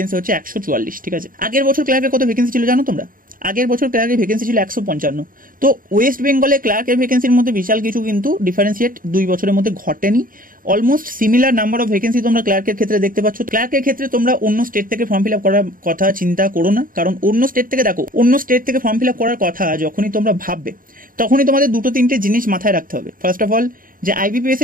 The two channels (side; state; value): left; late; 0.41 ms